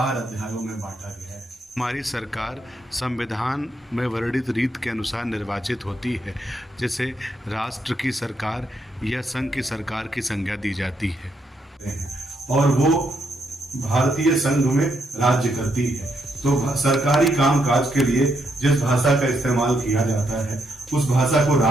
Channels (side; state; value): both; normal; correlation 0.77